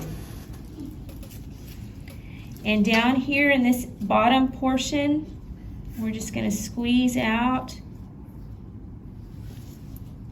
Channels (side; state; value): both; identical; correlation 1.00